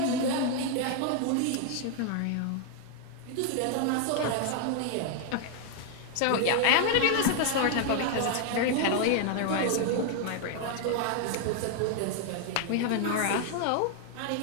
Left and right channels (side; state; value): both; different; correlation 0.00